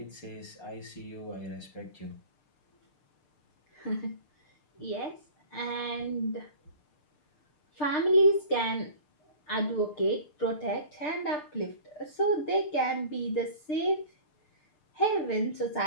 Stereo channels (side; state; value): right; late; 6.7 ms